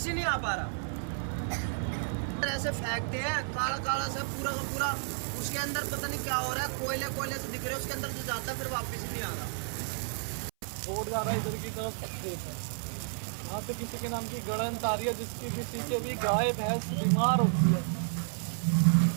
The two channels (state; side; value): silent; left; 57 dB below the other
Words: ही नहीं आ पा रहा। ऐसे फेंकते हैं, काला काला सा पूरा का पूरा, उसके अंदर पता नहीं क्या हो रहा है, कोयले से दिख रहे हैं, उसके अंदर जो जाता है फिर वापस ही नहीं आ रहा। रोड जा रहा है इधर की तरफ खेत है, यहाँ से किसी के नाम की गड़न आ रही है, जिसकी किसी के भी गाय भैंस बीमार होती है,